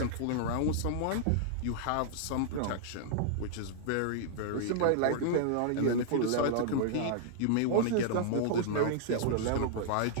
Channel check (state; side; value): different; both; correlation -0.01